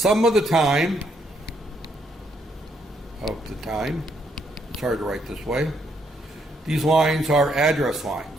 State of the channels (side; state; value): both; normal; correlation 0.73